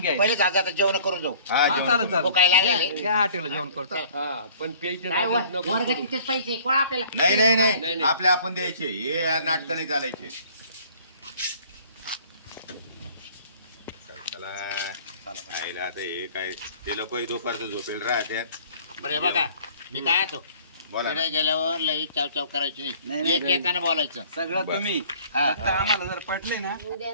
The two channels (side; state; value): both; inverted; correlation -0.53